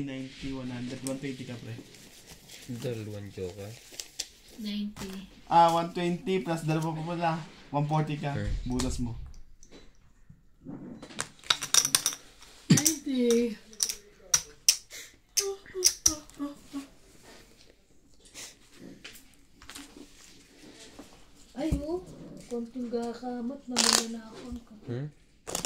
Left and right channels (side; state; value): both; identical; correlation 1.00